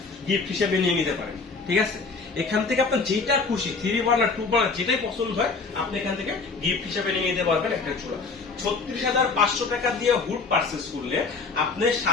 গিফট হিসেবে নিয়ে নিতে পারেন, ঠিক আছে। এখান থেকে আপনার যেটা খুশি 3 বার্নার 2 বার্নার যেটাই পছন্দ হয় আপনি এখান থেকে গিফট হিসেবে নিয়ে নিতে পারবেন একটা চুলা। 36,500 টাকা দিয়ে হুড পারচেস করলে আপনার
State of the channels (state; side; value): quieter; right; 4.3 dB